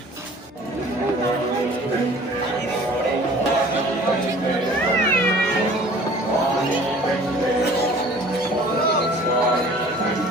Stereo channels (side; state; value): both; normal; correlation 0.49